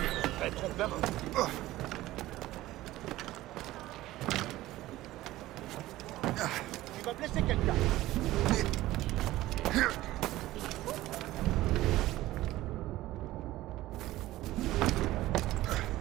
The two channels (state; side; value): quieter; left; 16.4 dB